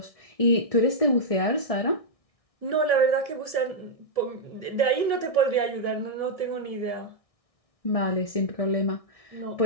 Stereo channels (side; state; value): right; late; 1.6 ms